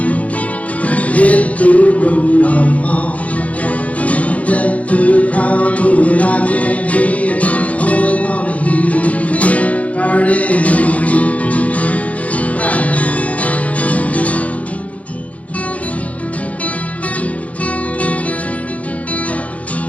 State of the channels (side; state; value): right; late; 0.067 ms